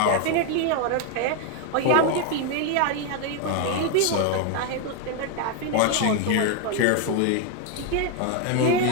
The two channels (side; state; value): both; different; correlation 0.01